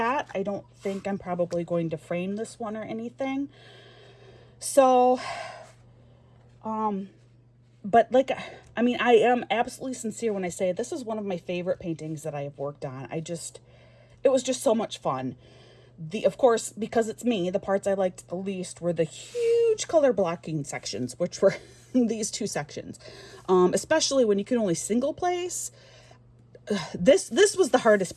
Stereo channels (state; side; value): identical; both; correlation 1.00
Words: I don't think I'm probably going to frame this one or anything. So, but like, I mean, I am absolutely sincere when I say this is one of my favorite paintings that I have worked on. It was just so much fun. Of course, because it's me, the parts I liked the least were the huge color blocking sections, which were these two sections. Especially when you can only single place. This was the hardest